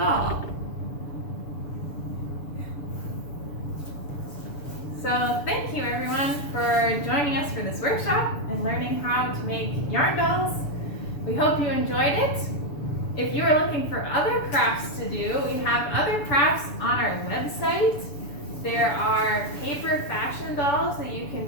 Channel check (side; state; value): right; late; 7.0 ms